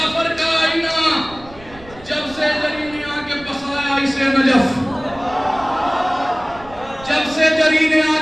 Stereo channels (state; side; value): noise; right; rumble, 20 dB below the sound